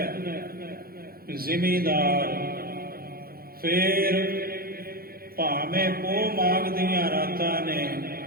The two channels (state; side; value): late; left; 0.44 ms